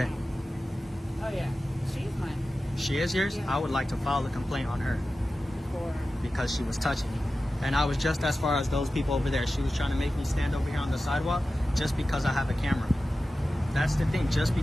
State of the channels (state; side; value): normal; both; correlation 0.94